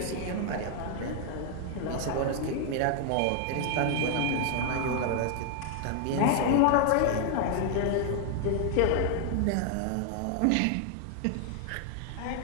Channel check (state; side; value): different; both; correlation 0.00